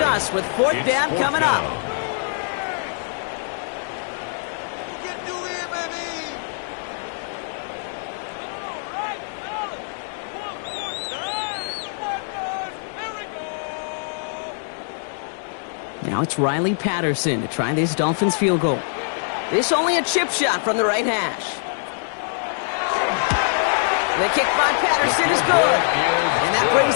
with 4th down coming up. Now it's Riley Patterson to try this Dolphins field goal. This only a chip shot from the right hash. The kick by Patterson is good. And that brings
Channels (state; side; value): silent; right; digital silence